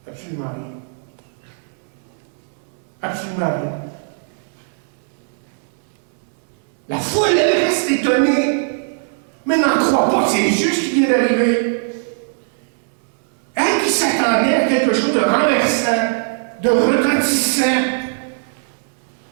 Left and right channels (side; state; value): left; silent; 66 dB below the other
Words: Absolument rien. Absolument rien. La foule, elle reste étonnée, mais n'en croit pas que c'est juste ce qui vient d'arriver. Elle qui s'attendait à quelque chose de renversant, de retentissant.